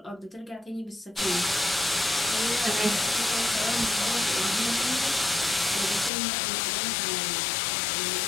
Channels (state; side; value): drops out; right; at 6.1 s